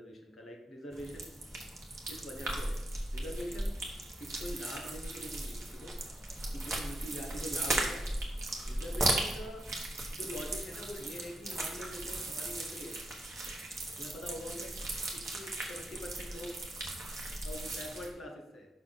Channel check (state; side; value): normal; both; correlation 0.80